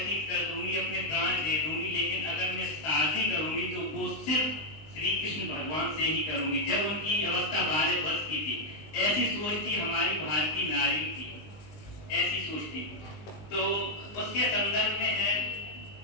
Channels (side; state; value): right; late; 19 ms